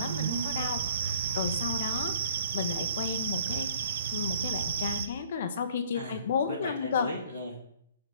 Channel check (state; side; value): inverted; both; correlation -0.55